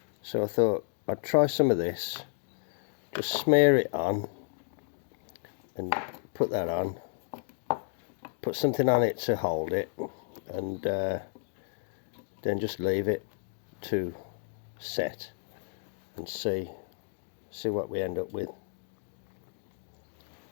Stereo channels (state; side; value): silent; right; digital silence